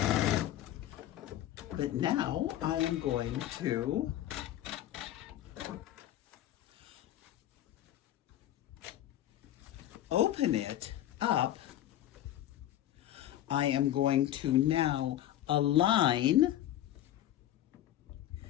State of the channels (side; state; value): right; quieter; 12.9 dB